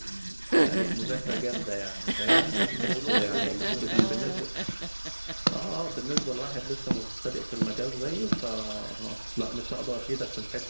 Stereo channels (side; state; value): both; inverted; correlation -1.00